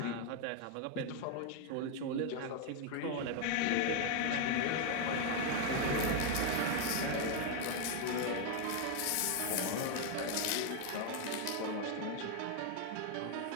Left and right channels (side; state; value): both; different; correlation 0.01